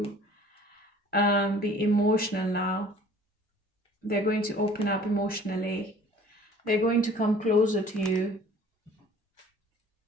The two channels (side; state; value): both; normal; correlation 0.51